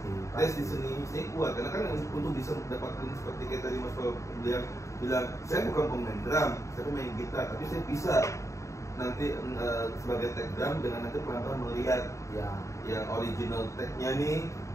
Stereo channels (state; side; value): late; right; 0.15 ms